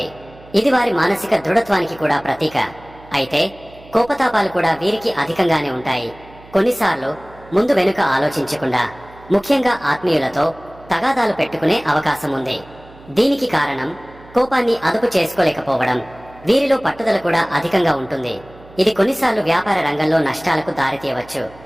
ఇది వారి మానసిక దృఢత్వానికి కూడా ప్రతీక. అయితే కోపతాపాలు కూడా వీరికి అధికంగానే ఉంటాయి. కొన్నిసార్లు ముందు వెనుక ఆలోచించకుండా, ముఖ్యంగా ఆత్మీయులతో తగాదాలు పెట్టుకునే అవకాశం ఉంది. దీనికి కారణం కోపాన్ని అదుపు చేసుకోలేకపోవడం. వీరిలో పట్టుదల కూడా అధికంగా ఉంటుంది. ఇది కొన్నిసార్లు వ్యాపార రంగంలో నష్టాలకు దారితీయవచ్చు.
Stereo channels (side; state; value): right; noise; hum, 22 dB below the sound